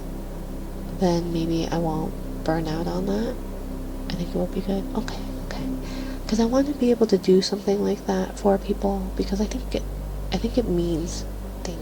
then maybe I won't burn out on that. I think it will be good. Okay, because I want to be able to do something like that for people, because I think it means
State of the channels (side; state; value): both; identical; correlation 1.00